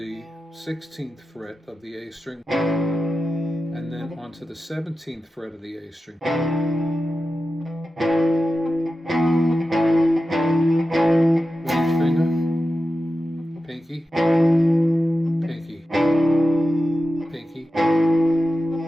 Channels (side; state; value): both; normal; correlation 0.92